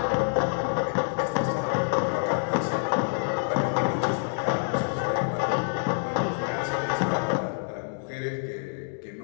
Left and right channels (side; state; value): right; silent; digital silence